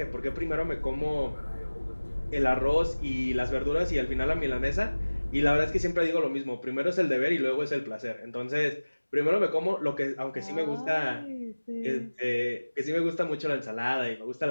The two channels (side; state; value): both; inverted; correlation -1.00